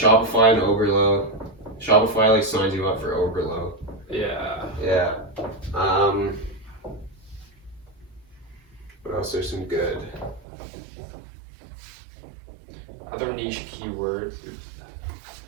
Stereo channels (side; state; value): left; drops out; at 10.5 s